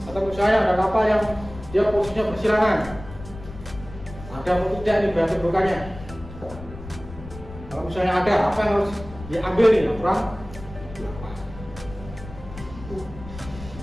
Atau misalnya ada kapal yang dia posisinya bersilangan, ada atau tidak nih daya tumpukannya. Kalau misalnya ada, apa yang harus diambil nih? Aturan 8.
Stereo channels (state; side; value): noise; left; rumble, 14 dB below the sound